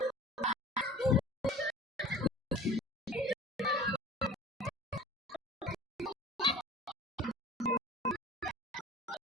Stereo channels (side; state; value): both; normal; correlation 0.43